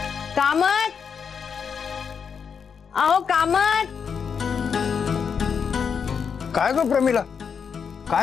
कामत, अहो कामत. काय ग प्रमिला,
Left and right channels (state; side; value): quieter; right; 6.5 dB